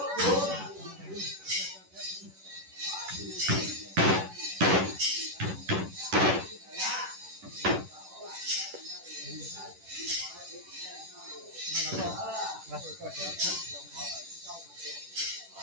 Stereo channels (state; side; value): late; left; 10 ms